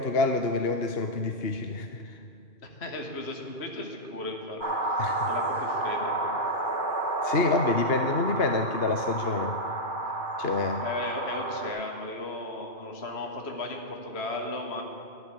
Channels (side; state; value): right; late; 2.8 ms